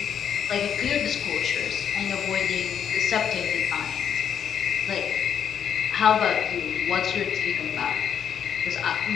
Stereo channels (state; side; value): quieter; right; 8.3 dB